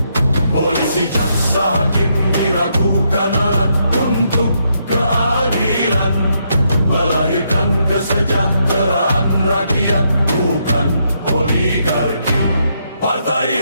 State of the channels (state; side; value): inverted; both; correlation -0.77